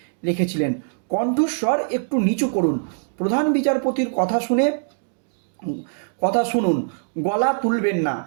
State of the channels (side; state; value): left; silent; digital silence